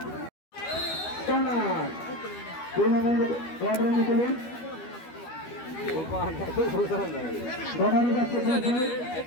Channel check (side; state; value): right; late; 12 ms